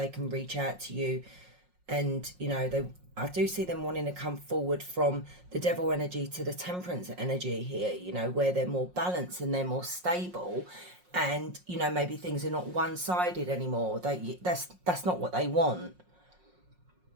can reach out to you. And you know, I do see them wanting to come forward from the Devil energy to the Temperance energy here, you know, where they're more balanced and they're more stable, and you know, maybe things are not one-sided anymore. That's not what they want.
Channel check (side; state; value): left; late; 5.5 ms